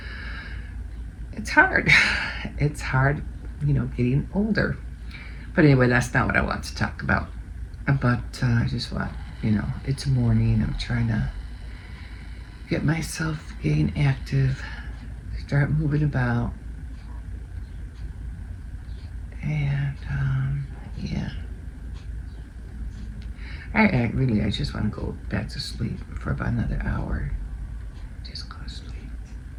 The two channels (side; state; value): both; identical; correlation 1.00